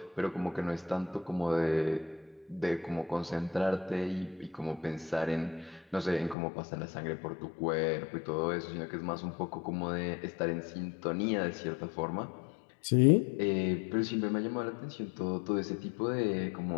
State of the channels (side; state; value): right; drops out; at 6.4 s